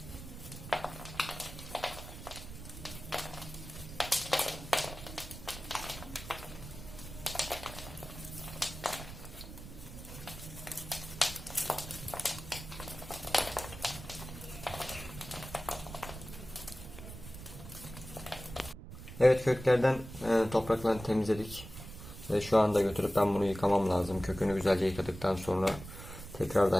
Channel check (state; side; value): noise; right; rumble, 12 dB below the sound